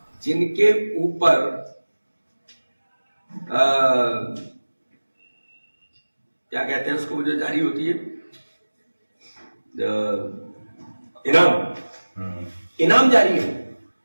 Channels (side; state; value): both; inverted; correlation -1.00